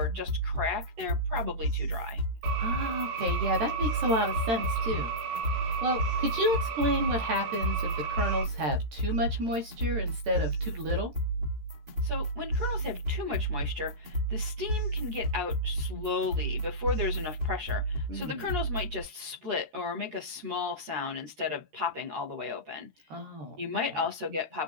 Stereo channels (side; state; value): left; late; 13 ms